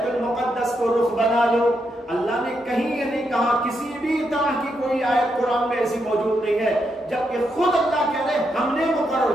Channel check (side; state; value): both; normal; correlation 0.81